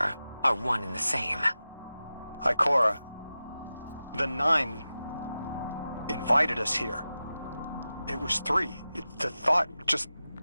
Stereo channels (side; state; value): both; inverted; correlation -0.94